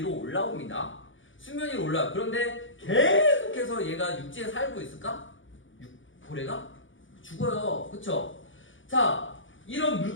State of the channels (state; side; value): late; right; 0.56 ms